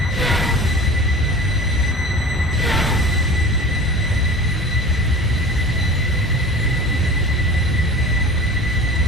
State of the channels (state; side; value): normal; both; correlation 0.38